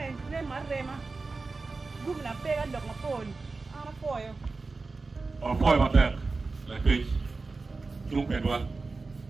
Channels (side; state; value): left; quieter; 3.9 dB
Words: ne ma rema gum na pe ga lok ma pon ana poyo o poyo ma ter la ke chung pe do